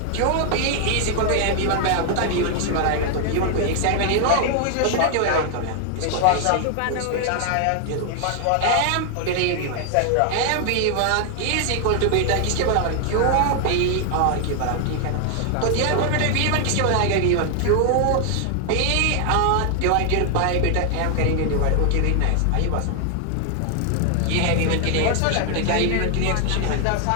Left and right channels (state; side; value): different; both; correlation 0.00